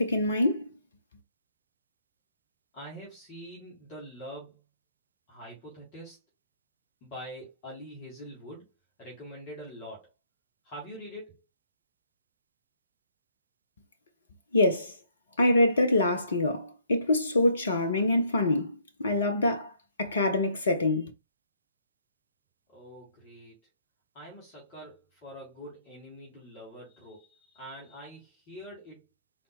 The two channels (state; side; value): inverted; both; correlation -0.67